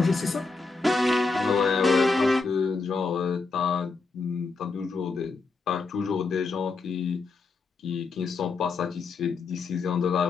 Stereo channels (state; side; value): quieter; right; 4.1 dB